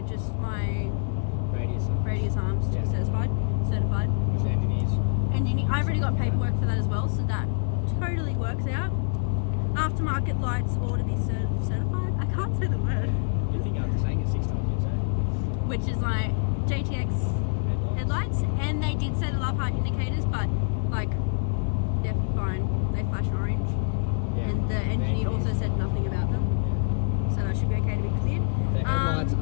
just my radius arms to be Yeah. certified. Which engineers. I've already got paperwork for that as well, so that totally works out. Aftermarket lights all to be certified. I can't say the word. You think after saying it 6 times, you say Which is like JTX headlights, and they did say the love heart indicators, but like they're fine. They flash orange, Yeah. and the engineer also said nothing about them, so that should be okay to be cleared. The headlights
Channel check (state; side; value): silent; right; digital silence